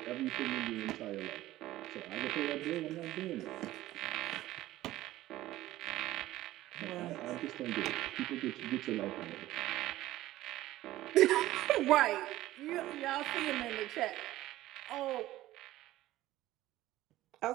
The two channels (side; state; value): left; quieter; 15.7 dB